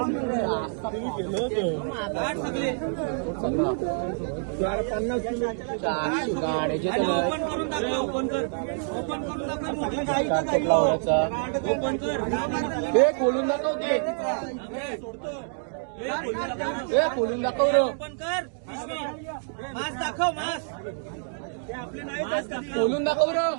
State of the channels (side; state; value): left; silent; 60 dB below the other